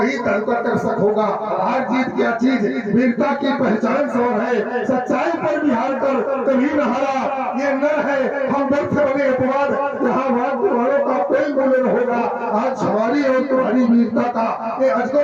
दर्शक होगा। हार जीत क्या चीज, वीरता की पहचान सौर है, सच्चाई पर भी हार कर कभी न हारा ये नर है। हम व्यर्थ बने अपवाद यहाँ वालों का कोई मूल्य न होगा। आज हमारी और तुम्हारी वीरता का ये अजगो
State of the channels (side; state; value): both; identical; correlation 1.00